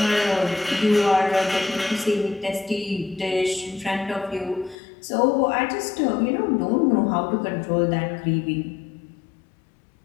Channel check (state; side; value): drops out; right; at 4.8 s